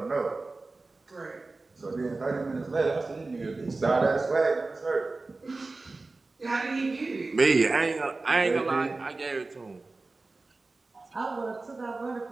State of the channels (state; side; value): quieter; left; 3.5 dB